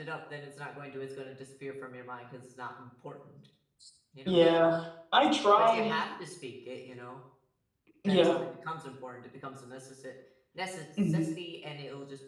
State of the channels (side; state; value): both; identical; correlation 1.00